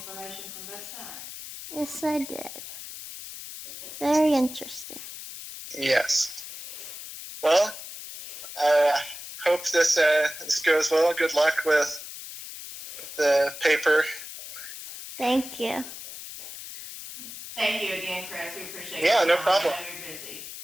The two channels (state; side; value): noise; left; hiss, 11 dB below the sound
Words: from both sides. Yes, I did. Very interesting. Yes. Well, hope this goes well. Good luck with the paper. Thank you. Thank you again, Chris. We appreciate Yeah, your no time. problem. I know you're busy.